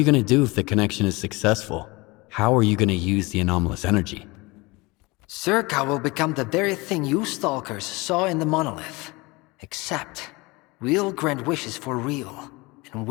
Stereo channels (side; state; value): right; quieter; 24.1 dB